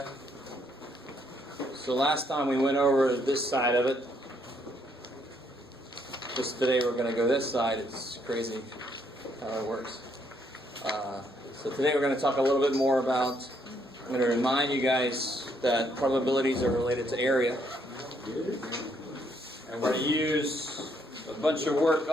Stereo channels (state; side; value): normal; both; correlation 0.71